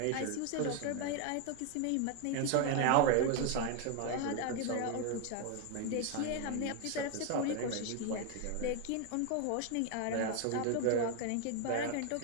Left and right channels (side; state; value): both; different; correlation 0.01